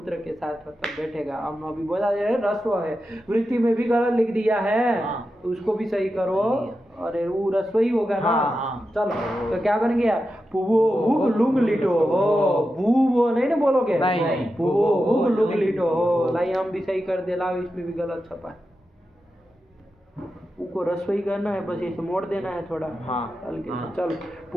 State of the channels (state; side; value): normal; both; correlation 0.90